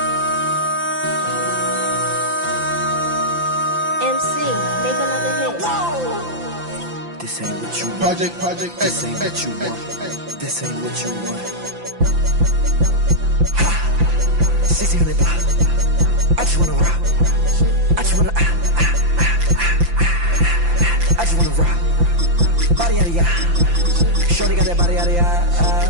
make another hit. This ain't what you want. Project, This ain't what you want. This ain't what you want. Ha! 1600 block. I just wanna rock. I just wanna I just wanna rock. Body out of ya. Shorty got that body out of ya.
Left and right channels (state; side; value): late; left; 5.9 ms